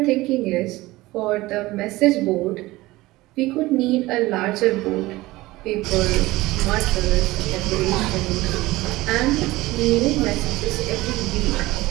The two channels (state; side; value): quieter; left; 19.1 dB